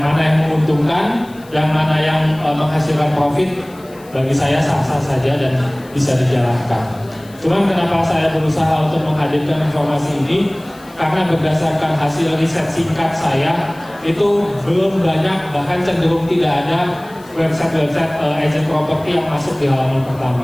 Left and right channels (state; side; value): noise; left; hiss, 25 dB below the sound